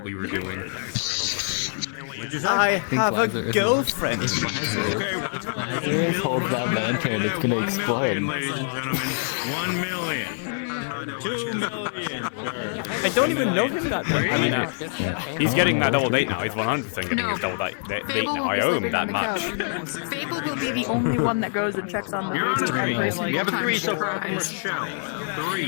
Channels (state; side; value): silent; right; digital silence